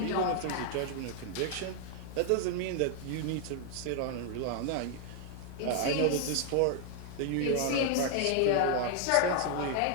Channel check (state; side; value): different; both; correlation 0.00